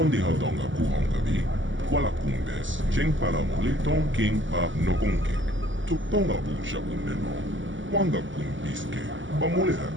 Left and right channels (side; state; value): left; late; 0.55 ms